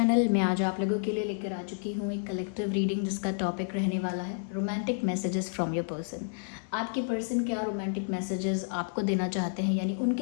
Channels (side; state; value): right; silent; digital silence